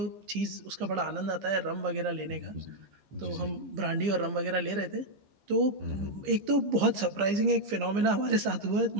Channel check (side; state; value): left; late; 15 ms